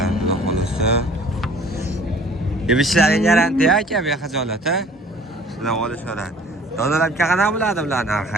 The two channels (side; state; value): both; normal; correlation 0.51